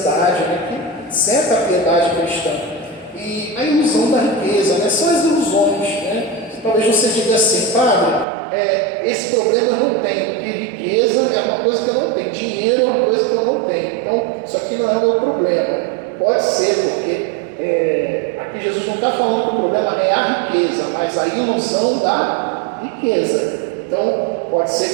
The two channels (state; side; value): drops out; left; at 8.2 s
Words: né? Que certa a piedade cristã. E a ilusão da riqueza, né? São as ilusões, né? Talvez você diga assim, padre, esse problema eu não tenho, porque riqueza é uma coisa que eu não tenho, dinheiro é uma coisa que eu não tenho, então isso aqui não é o meu problema. Pode ser, porque aqui Jesus não está falando que o problema não é a riqueza, mas a ilusão da riqueza. Então, pode